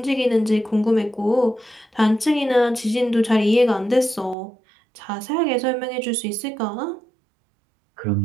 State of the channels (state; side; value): drops out; left; at 4.4 s